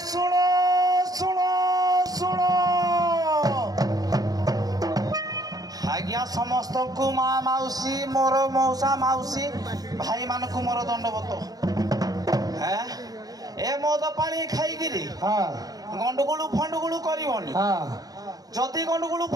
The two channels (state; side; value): late; left; 0.18 ms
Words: समस्त को माँ मौसी मोर मौसा मौसी भाई मान को मोर दंडवत है ए मद पानी खाई हाँ गंडगोलू फंडगोलू करबनी हाँ जदि गंडगोलू